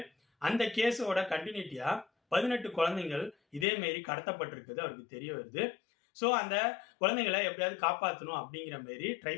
அந்த கேஸோட கண்டினியூட்டியா 18 குழந்தைகள் இதே மாரி கடத்தப்பட்டிருக்குது அவருக்கு தெரிய வருது. ஸோ அந்த குழந்தைங்களை எப்படியாவது காப்பாற்றணும் அப்படிங்கிற மாரி ட்ரை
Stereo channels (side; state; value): right; drops out; at 3.7 s